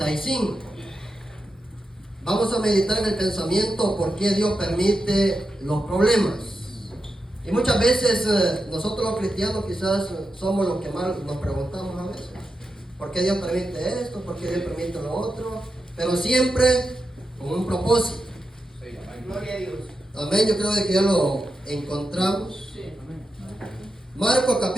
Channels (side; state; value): both; normal; correlation 0.89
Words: Vamos a meditar en el pensamiento por qué Dios permite los problemas. Y muchas veces nosotros los cristianos quizás somos los que más nos preguntamos a veces. ¿Por qué Dios permite esto? ¿Por qué Dios permite lo otro? Pero siempre con un propósito. Gloria a Dios. Amén, yo creo que ya lo encontramos. Marcos